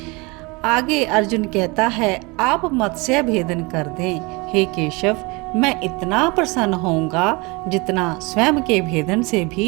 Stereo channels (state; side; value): quieter; left; 26.7 dB